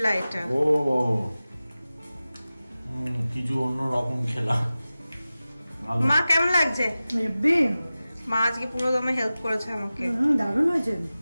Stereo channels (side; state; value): both; inverted; correlation -0.96